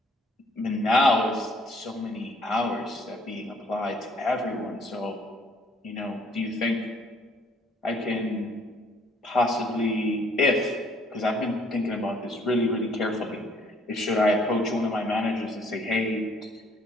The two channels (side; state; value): both; normal; correlation 0.62